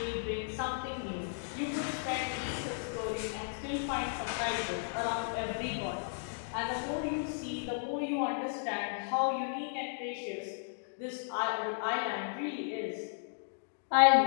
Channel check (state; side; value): silent; right; digital silence